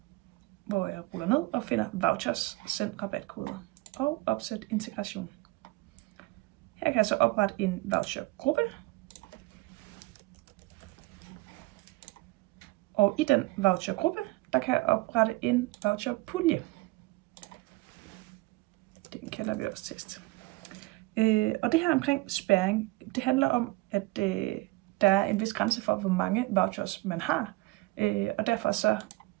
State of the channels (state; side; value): quieter; left; 21.6 dB